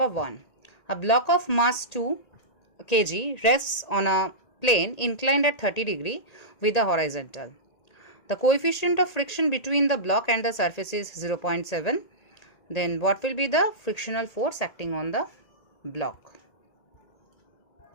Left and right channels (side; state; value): right; late; 1.9 ms